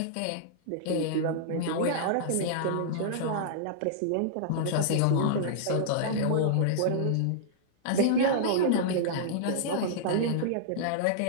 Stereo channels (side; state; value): both; different; correlation -0.02